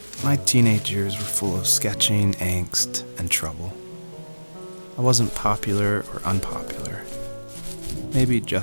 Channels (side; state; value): both; inverted; correlation -1.00